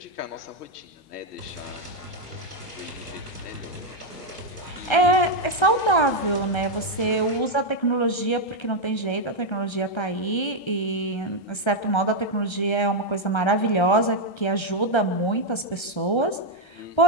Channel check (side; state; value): right; late; 1.3 ms